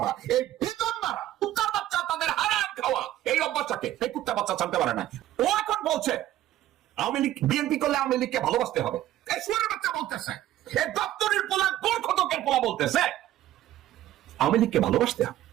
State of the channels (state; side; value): quieter; left; 13.7 dB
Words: এই বিজন্মারা, কুত্তার বাচ্চা, তাদের হারাম খাওয়া এই অভ্যাসটাকে এই কুত্তা বাচ্চা জানতে পারে না। ও এখন বলছে আওয়ামী লীগ বিএনপি করলে আওয়ামী লীগকে ভালোবাসতে হবে। এই শুয়ারের বাচ্চা বলতেছে, এই দপ্তরের পোলা, গোরখতকের পোলা বলতেছে আওয়ামী লীগকে ভালোবাসতে হবে।